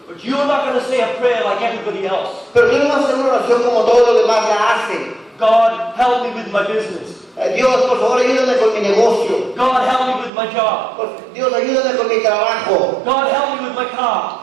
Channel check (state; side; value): drops out; left; at 10.3 s